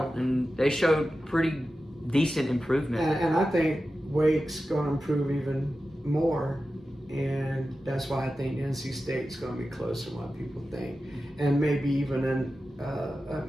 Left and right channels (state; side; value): normal; both; correlation 0.93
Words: and they showed pretty decent improvement. And I think Wake's going to improve even more, and that's why I think NC State's going to be closer than what people think, and maybe even